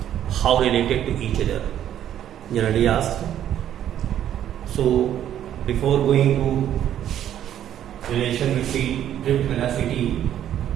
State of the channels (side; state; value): left; quieter; 10.8 dB